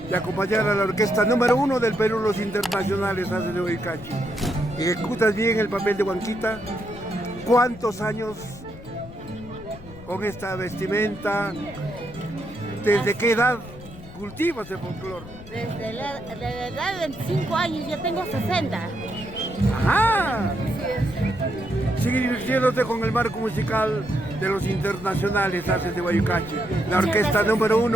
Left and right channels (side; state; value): left; noise; rumble, 16 dB below the sound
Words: de acompañar a la orquesta número 1 del Perú, los internacionales Haces de Huaycachi. Ejecutas bien el papel de Huanquita. ¿Cuántos años con esta vestimenta? ¿Desde qué edad cultivas el folclore? Desde la edad de 25 años, yo tengo 60. ¡Ajá! Sigue divirtiéndote con el marco musical de los internacionales Haces de Huaycachi, la orquesta número